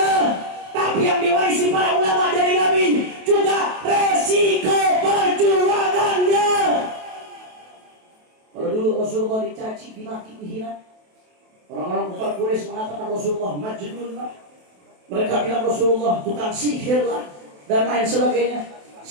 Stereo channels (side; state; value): left; late; 28 ms